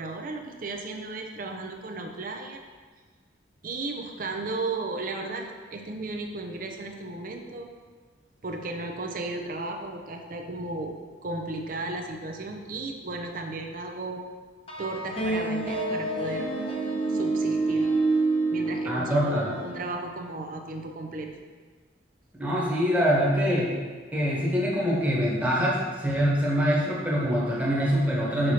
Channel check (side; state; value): both; normal; correlation 0.62